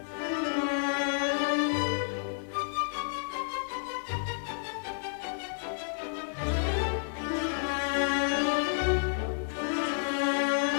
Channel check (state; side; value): silent; right; digital silence